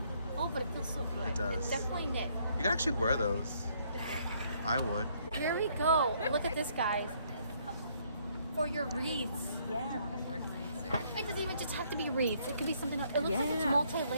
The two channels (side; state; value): both; inverted; correlation -0.67